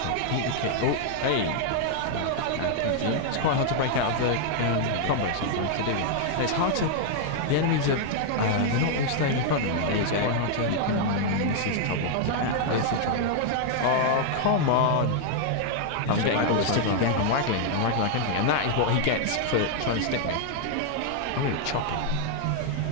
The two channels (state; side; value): different; both; correlation 0.00